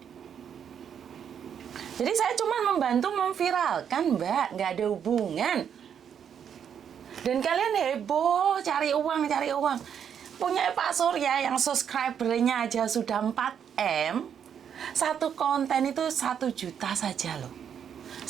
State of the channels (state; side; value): quieter; left; 8.2 dB